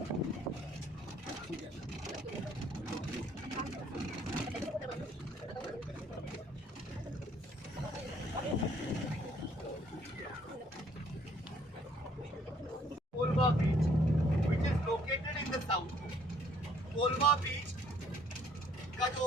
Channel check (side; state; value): both; normal; correlation 0.62